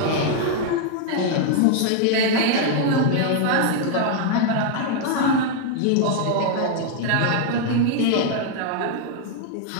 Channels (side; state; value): both; different; correlation 0.00